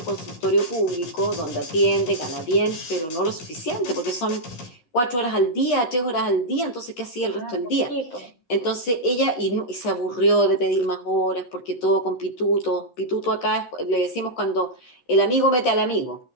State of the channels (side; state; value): right; late; 12 ms